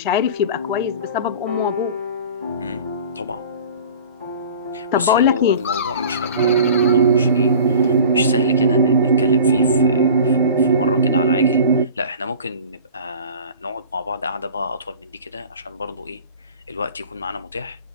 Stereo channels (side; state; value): both; inverted; correlation -0.41